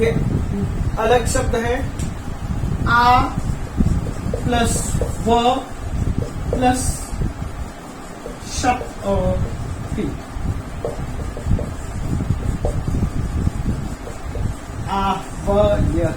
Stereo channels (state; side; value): identical; both; correlation 1.00